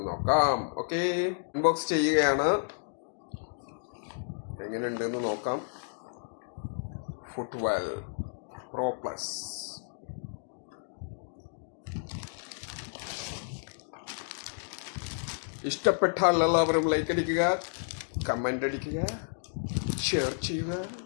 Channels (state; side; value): silent; right; digital silence